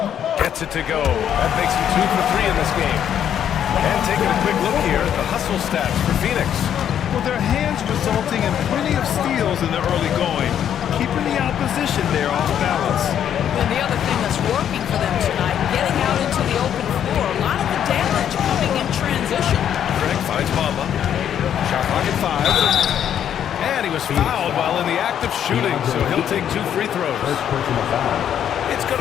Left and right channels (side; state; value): right; quieter; 9.6 dB